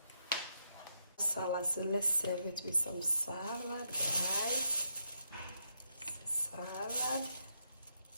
Salad, so let's serve it with some salad, guys. Salad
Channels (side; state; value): both; inverted; correlation -0.79